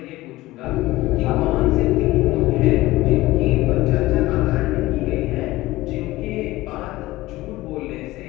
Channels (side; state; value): right; quieter; 18.2 dB